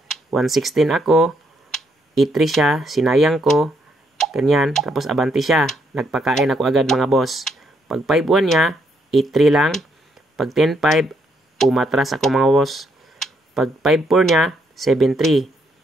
1-16 ako. 8-3 siya, sinayang ko. Ganyan. Tapos, abanti siya. Nagpakain ako agad mga boss. Pag 5-1 niya, 8-3 lang. Pag 10-5, umatras ako mga boss. Pag 5-4 niya, 7-3.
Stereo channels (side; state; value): both; normal; correlation 0.74